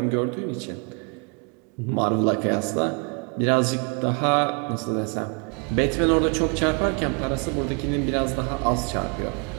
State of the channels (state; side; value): quieter; left; 34.3 dB